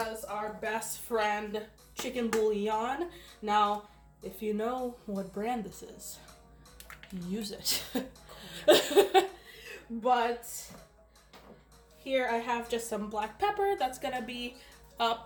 our best friend chicken bouillon. Now, if you know what brand this is, use it. But here I have just some black pepper. That's gonna be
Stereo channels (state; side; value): identical; both; correlation 1.00